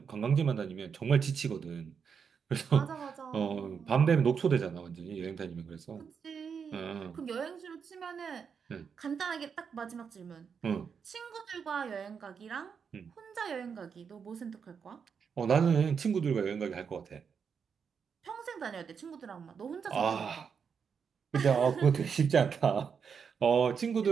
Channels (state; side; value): quieter; left; 6.5 dB